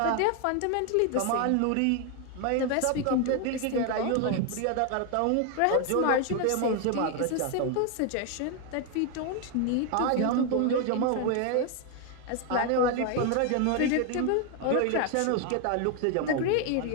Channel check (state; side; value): different; both; correlation 0.01